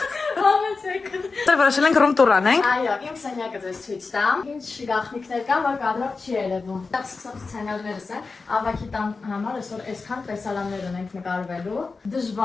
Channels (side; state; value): right; quieter; 4.2 dB